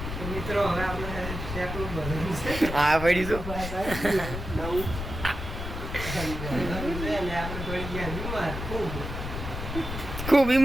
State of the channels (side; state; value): left; noise; rumble, 6 dB below the sound